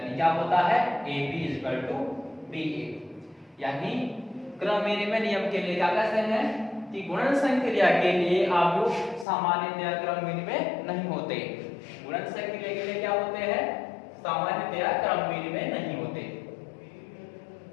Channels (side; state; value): right; drops out; at 9.2 s